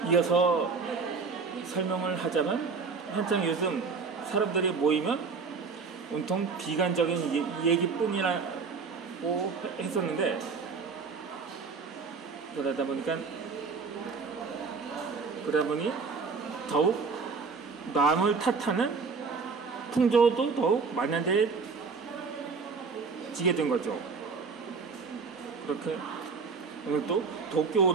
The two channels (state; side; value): quieter; left; 4.9 dB